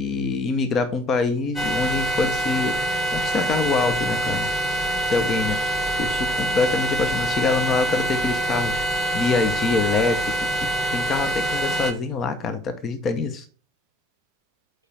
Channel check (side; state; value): both; normal; correlation 0.60